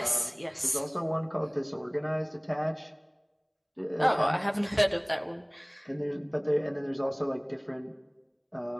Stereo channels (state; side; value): identical; both; correlation 1.00